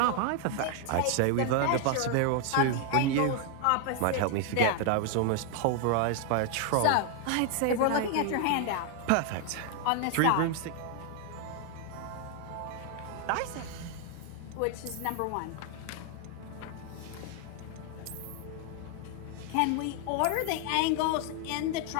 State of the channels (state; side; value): different; both; correlation 0.00